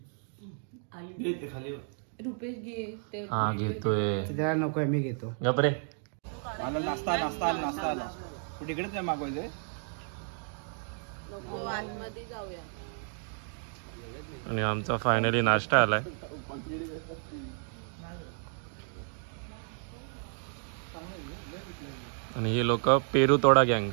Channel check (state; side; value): silent; left; 56 dB below the other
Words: रुपेश घे ते हा घेतोय। त्याला नकोय, मी घेतो। गपरे। मला नाश्ता आला कुठे इकडेच नाही मागवायचंय। नको, आतमध्ये जाऊया। आणि आमचा फायनली नाश्ता आलाय। आणि हे लोक पेरू तोडा गँग।